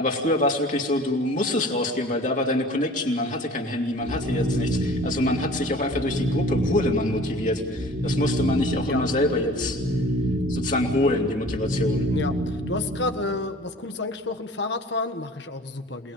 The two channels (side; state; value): both; normal; correlation 0.45